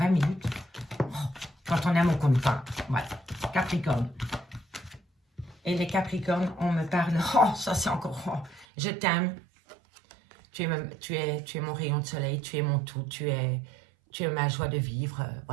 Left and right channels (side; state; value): left; drops out; at 8.7 s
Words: minutes. Oh, quand on aime, on compte pas. Voilà, Capricorne. Et les capricornes, on me parle. Oh, ça c'est encore... Oh, je t'aime. tu es mon rayon de soleil, tu es mon tout, tu es ma joie de vivre.